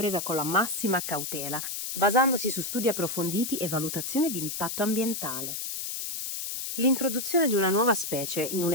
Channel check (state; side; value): noise; left; hiss, 5 dB below the sound